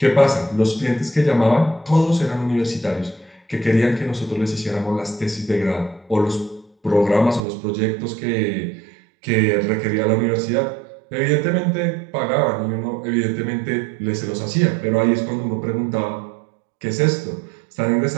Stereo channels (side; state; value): left; drops out; at 7.4 s